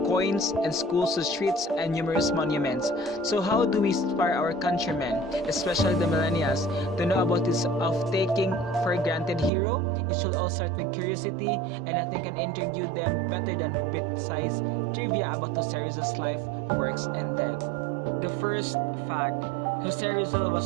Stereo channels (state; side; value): drops out; left; at 9.5 s